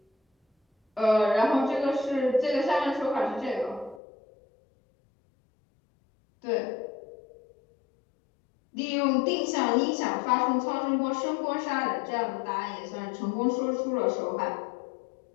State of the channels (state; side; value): drops out; right; at 4.0 s